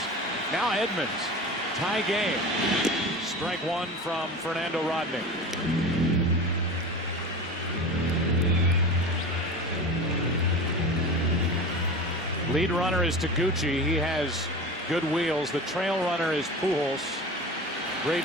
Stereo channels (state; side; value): normal; both; correlation 0.31